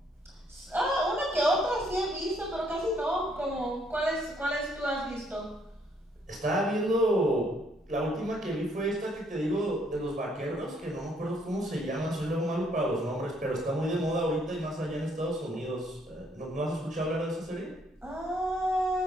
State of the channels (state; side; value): normal; both; correlation 0.68